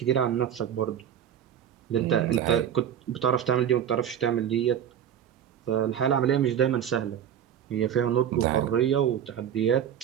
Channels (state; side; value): quieter; left; 9.5 dB